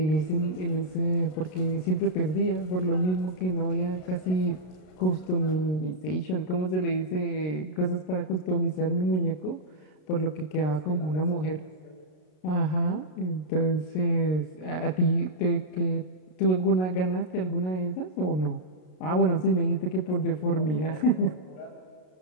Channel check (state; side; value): late; right; 33 ms